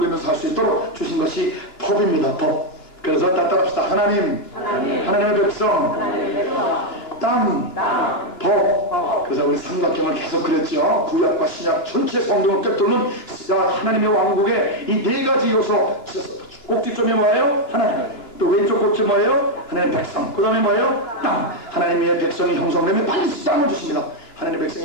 살 수 있도록 주신 것이 법입니다. 법. 그래서 따라합시다. 하나님의 백성, 땅, 법. 그래서 우리 삼각형을 계속 그랬죠. 구약과 신약 전체 성경을 꿰뚫는 하나님의 왕국의 이 네 가지 요소. 꼭지점이 뭐예요? 하나님. 또 왼쪽 꼭지 뭐예요? 하나님의 백성. 그 다음에 뭐예요? 땅. 하나님의 백성이 형성되면 반드시 땅을 주십니다. 하나님의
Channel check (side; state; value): right; late; 2.9 ms